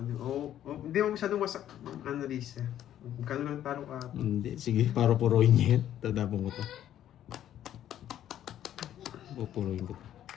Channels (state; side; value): quieter; right; 11.3 dB